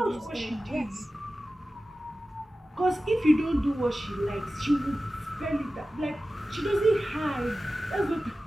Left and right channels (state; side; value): normal; both; correlation 0.95